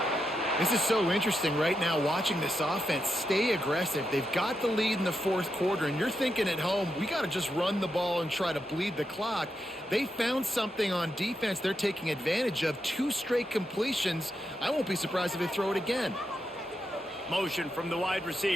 This is so interesting right now, watching this offense stay aggressive. They've got the lead in the 4th quarter, and you're thinking at home, we got to just run the ball and try to bleed the clock. They found something on defense they're taking advantage of. 2 straight completions. I won't be surprised if they throw it again. Motion from the wide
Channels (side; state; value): both; normal; correlation 0.85